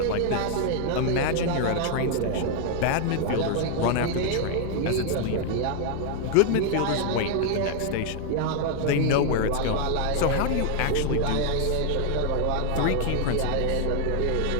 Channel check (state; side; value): different; both; correlation 0.00